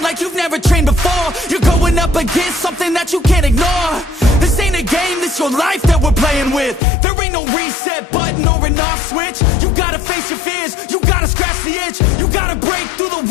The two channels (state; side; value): drops out; right; at 6.8 s